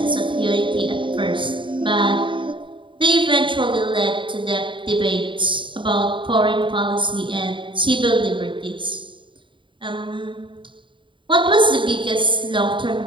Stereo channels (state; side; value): late; left; 0.24 ms